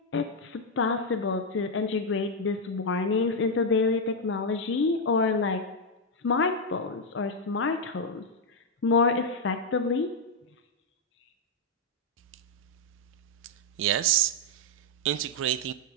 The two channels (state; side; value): normal; both; correlation 0.00